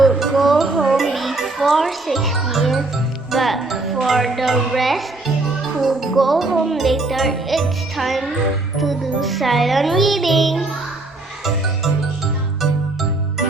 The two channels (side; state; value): left; quieter; 3.1 dB